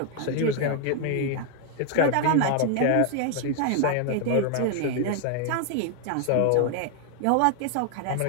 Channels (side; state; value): both; different; correlation 0.00